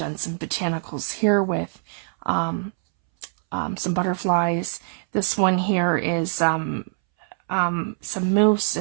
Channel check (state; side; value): silent; left; 63 dB below the other